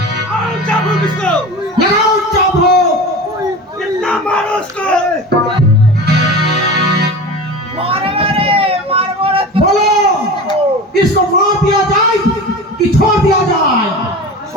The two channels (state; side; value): normal; both; correlation 0.32